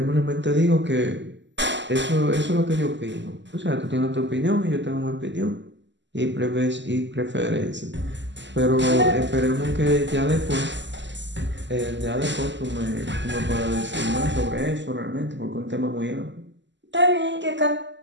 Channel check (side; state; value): left; late; 0.53 ms